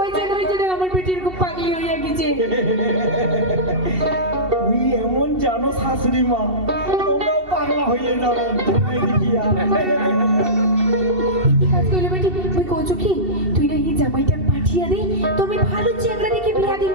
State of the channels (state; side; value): late; left; 2.7 ms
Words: ওই জন্য আমার বেটি এরকম পাগলি হইয়া গেছে তুই এমন জানো শাশুড়ি মা তোমরাও পাগলা হয়ে যাবে দেখিয়া কি কাজ কইলে বেটি তুই কইছো কি তুই না এই জামাইটা পাঠিয়ে দে তুমি ভালো চেংড়া দেখে বিয়া দিন